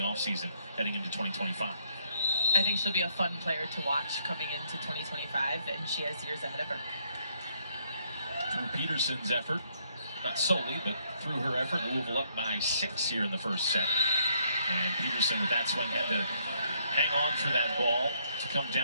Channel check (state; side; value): inverted; both; correlation -0.70